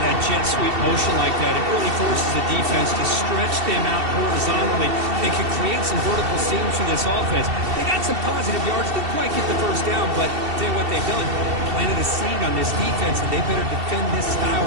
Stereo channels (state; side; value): late; left; 2.7 ms